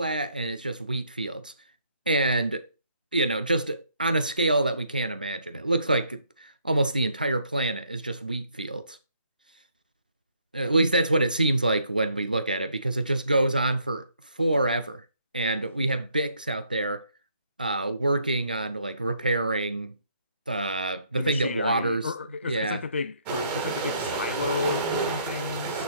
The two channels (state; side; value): inverted; both; correlation -0.68